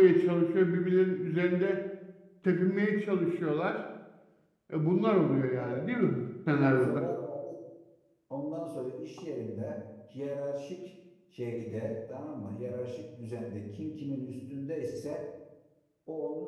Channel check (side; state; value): both; identical; correlation 1.00